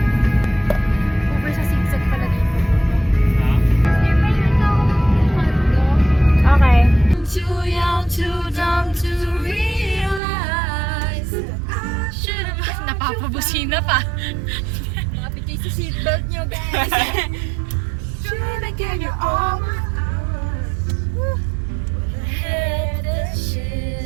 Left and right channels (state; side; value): drops out; left; at 10.2 s